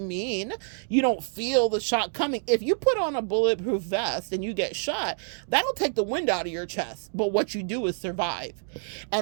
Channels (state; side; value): silent; left; digital silence